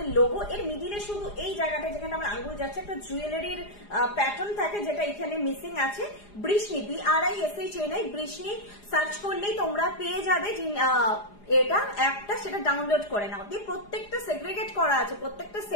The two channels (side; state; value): right; late; 4.9 ms